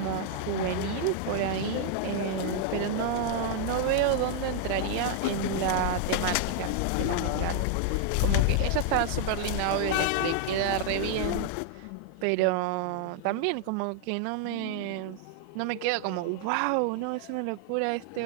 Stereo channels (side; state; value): both; different; correlation 0.00